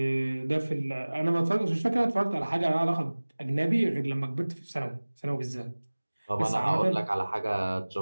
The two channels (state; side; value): inverted; both; correlation -1.00